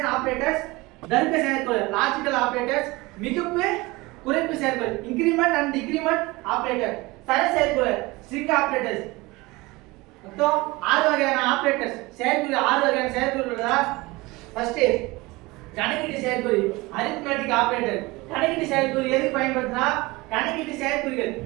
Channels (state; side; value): quieter; left; 22.3 dB